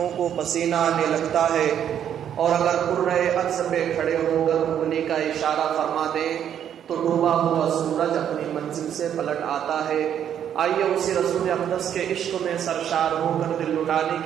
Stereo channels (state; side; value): quieter; left; 9.5 dB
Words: کو پسینہ آنے لگتا ہے، اور اگر کرۂ ارض پہ کھڑے ہو کر انگلی کا اشارہ فرما دیں تو ڈوبا ہوا سورج اپنی منزل سے پلٹ آتا ہے۔ آئیے اسی رسول اقدس کے عشق میں سرشار ہو کر دل لٹانے